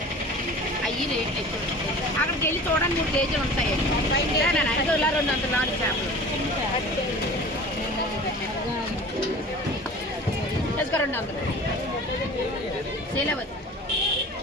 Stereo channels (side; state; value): both; normal; correlation 0.40